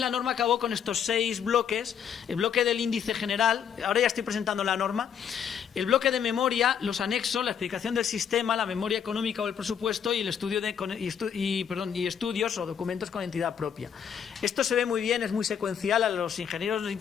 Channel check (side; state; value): right; quieter; 8.0 dB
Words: norma acabó con estos 6 bloques. El bloque del índice general, ahora ya estoy presentando la norma, el bloque de memoria, los anexos, la explicación del sistema, la memoria económica o el presupuesto y el estudio y estudios o documentos con entidad propia. Esto se ve muy bien, es muy secuencial. A los ingenieros